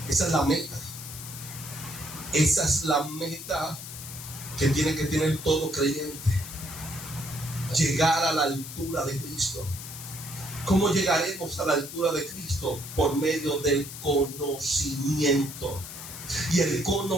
Esa es la meta. Esa es la meta que tiene que tener todo creyente. Llegar a la altura de Cristo. ¿Cómo llegaremos a la altura de Cristo? Por medio del conocimiento. Y el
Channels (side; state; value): left; noise; hiss, 11 dB below the sound